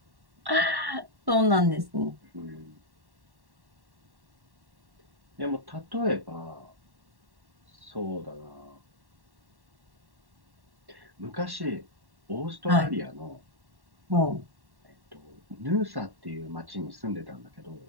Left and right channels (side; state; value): left; late; 1.1 ms